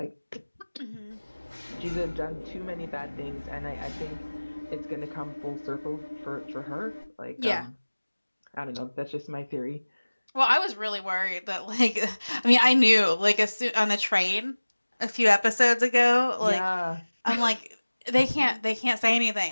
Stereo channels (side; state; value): both; inverted; correlation -1.00